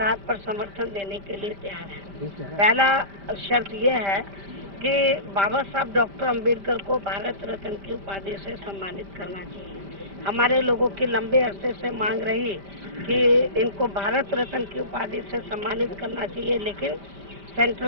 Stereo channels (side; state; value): left; late; 5.1 ms